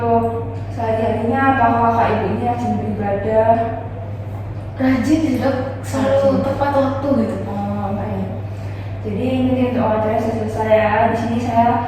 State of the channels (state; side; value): identical; both; correlation 1.00